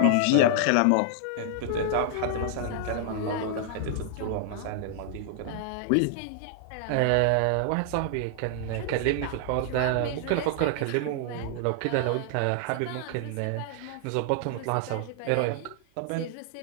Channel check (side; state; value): both; different; correlation -0.01